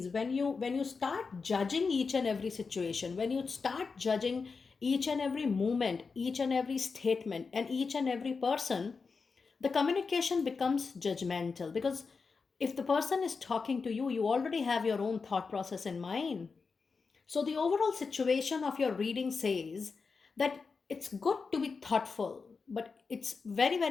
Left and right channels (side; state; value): right; quieter; 4.8 dB